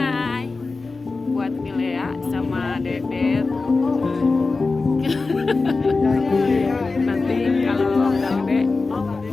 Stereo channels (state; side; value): quieter; right; 3.8 dB